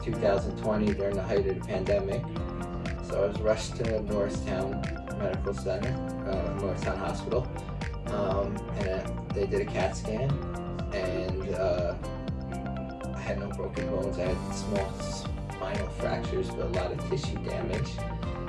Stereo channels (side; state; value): both; identical; correlation 1.00